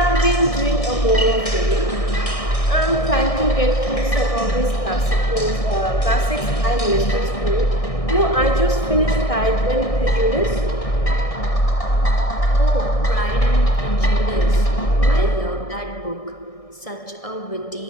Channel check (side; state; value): right; late; 1.6 ms